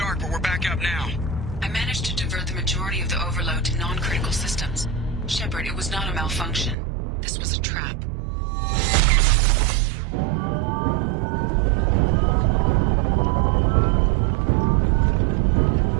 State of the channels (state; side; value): drops out; left; at 6.8 s